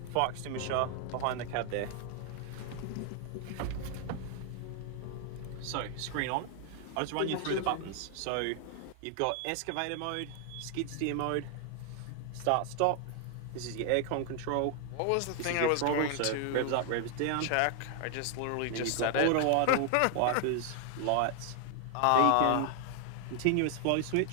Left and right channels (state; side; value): different; both; correlation 0.00